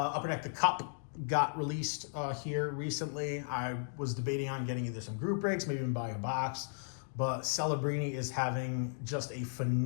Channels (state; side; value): silent; right; digital silence